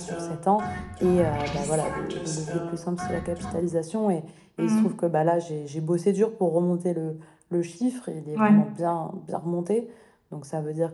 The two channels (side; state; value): both; identical; correlation 1.00